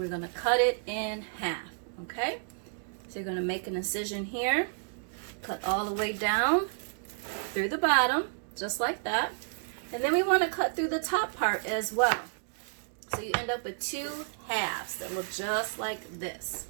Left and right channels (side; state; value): left; silent; digital silence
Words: going to cut it in half, okay? So you're going to make an incision here, cut all the way down through the bottom, just like that. And then we want to cut through the top part as well. So you end up with two halves that look just like this.